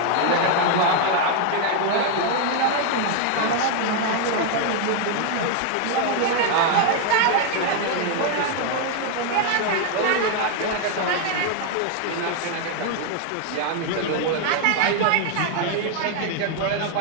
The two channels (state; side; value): different; both; correlation 0.00